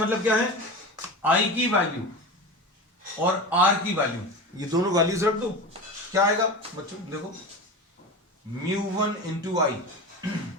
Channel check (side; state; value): both; normal; correlation 0.28